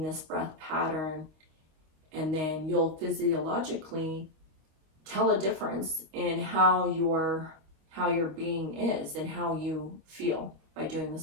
this breath pattern, and then you'll physiologically tell a difference in how your being is and how you feel by doing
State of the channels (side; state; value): left; late; 25 ms